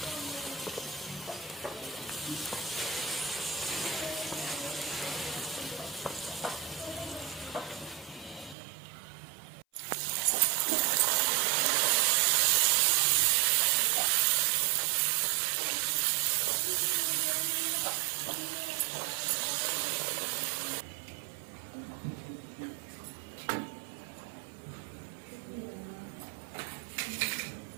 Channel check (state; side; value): drops out; left; at 8.6 s